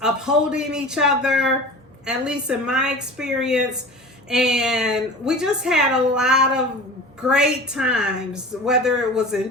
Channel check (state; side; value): normal; both; correlation 0.36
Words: upholding each other, at least in my experience. And we just had a lot of great times, whether it was in